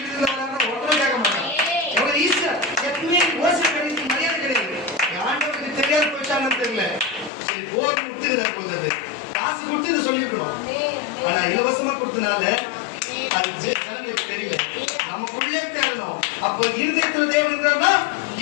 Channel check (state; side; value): drops out; right; at 7.3 s